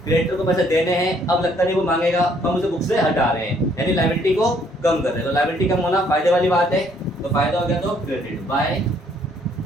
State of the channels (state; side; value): normal; both; correlation 0.65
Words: क्रेडिटर को पैसे देने हैं, अब लगता नहीं वो मांगेगा, हम उसे बुक से हटा रहे हैं, यानी लायबिलिटी को कम कर रहे हैं। तो लायबिलिटी कम होना फायदे वाली बात है, तो फायदा हो गया। तो क्रेडिट बाय